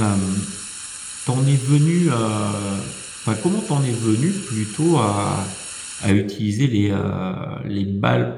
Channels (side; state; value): both; identical; correlation 1.00